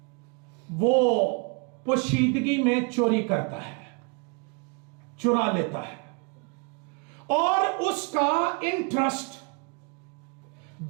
वो पोशीदगी में चोरी करता है, चुरा लेता है, और उसका इंटरेस्ट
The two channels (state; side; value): quieter; left; 33.2 dB